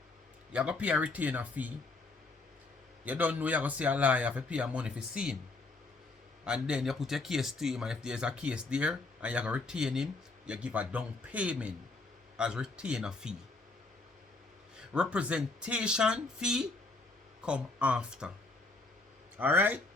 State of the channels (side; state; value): right; quieter; 3.4 dB